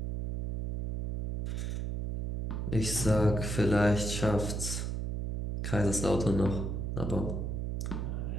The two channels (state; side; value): noise; right; hum, 2 dB below the sound